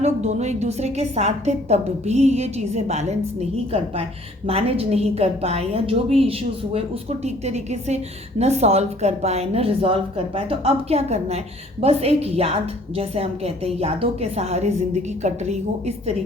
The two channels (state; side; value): normal; both; correlation 0.57